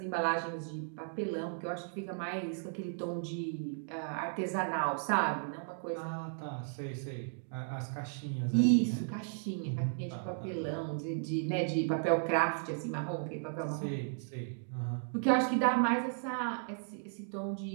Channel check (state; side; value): silent; left; digital silence